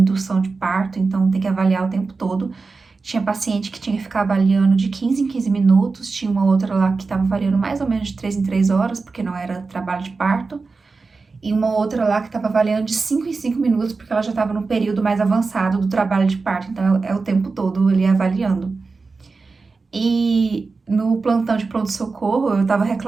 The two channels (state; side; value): quieter; left; 4.2 dB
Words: de parto, então tem que avaliar o tempo todo. Tinha paciente que tinha que ficar avaliando de 15 em 15 minutos, tinha uma outra lá que estava avaliando mais ou menos de 3 em 3 horas, porque não era trabalho de parto. E uma outra lá que estava avaliando de 5 em 5 minutos, porque ela já estava no período mais avançado do trabalho de parto, então é o tempo todo ali avaliando. E no plantão de pronto-socorro, eu tava